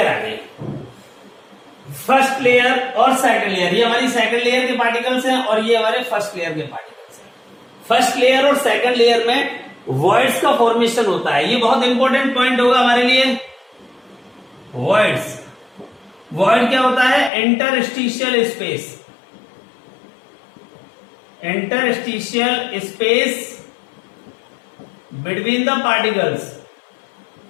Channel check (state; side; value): drops out; right; at 17.3 s